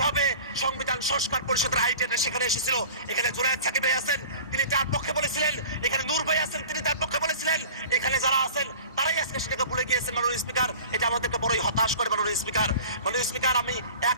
সংবিধান সংস্কার পরিষদের আইডিয়াটা সেখানে এসেছিল। এখানে জুনায়েদ সাকিব ভাই আছেন, তিনি তার পক্ষে বলেছিলেন, এখানে নূর ভাই আছেন, তিনি তার পক্ষে বলেছিলেন, এখানে যারা আছেন তারাই আজকে সেটাকে ভুলে গিয়েছেন মাননীয় স্পিকার। এটা আমাদেরকে বড়ই হতাশ করে মাননীয় স্পিকার। মাননীয় স্পিকার, আমি 1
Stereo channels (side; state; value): both; inverted; correlation -0.40